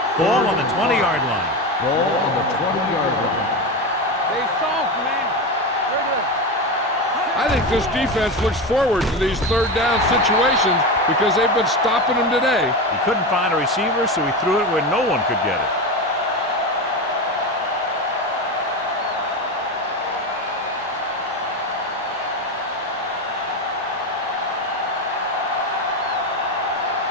Ball on the 20-yard line. Ball on the 20-yard line. They soft, man. I think this defense looks forward to these third down situations because they've been stopping them today. He couldn't find a receiver, so he threw it where no one could get it.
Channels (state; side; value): normal; both; correlation 0.19